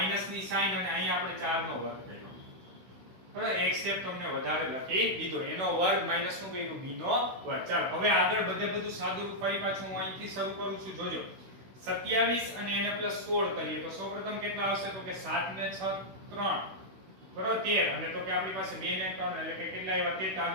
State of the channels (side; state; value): left; late; 16 ms